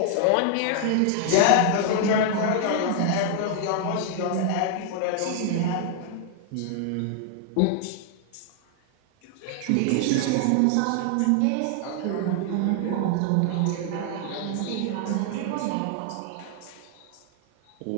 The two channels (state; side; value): different; both; correlation 0.00